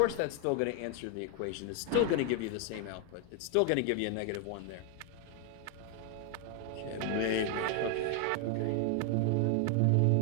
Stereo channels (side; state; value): both; different; correlation 0.00